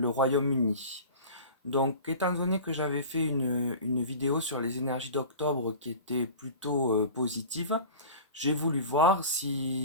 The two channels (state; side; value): inverted; both; correlation -0.37